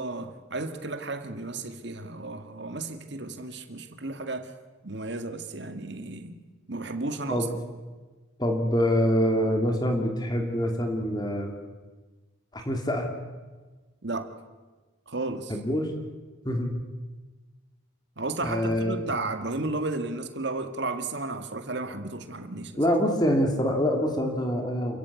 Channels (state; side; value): normal; both; correlation 0.56